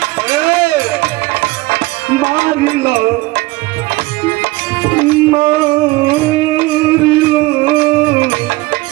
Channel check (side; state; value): left; quieter; 20.9 dB